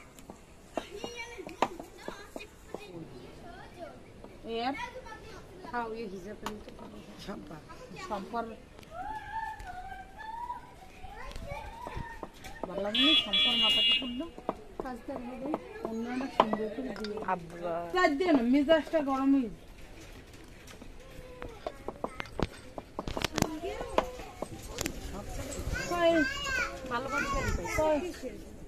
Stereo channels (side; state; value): both; identical; correlation 1.00